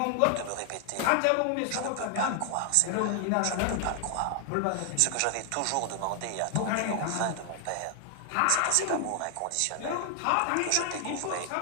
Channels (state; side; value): different; both; correlation 0.00